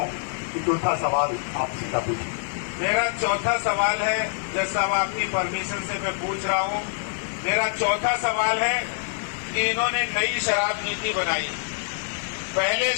कि चौथा सवाल आप सीधा पूछिए। मेरा चौथा सवाल है, जैसा आपकी परमिशन से मैं पूछ रहा हूं, मेरा चौथा सवाल है कि इन्होंने नई शराब नीति बनाई। पहले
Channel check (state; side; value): silent; right; digital silence